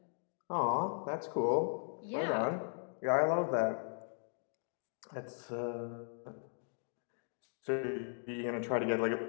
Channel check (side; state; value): right; silent; digital silence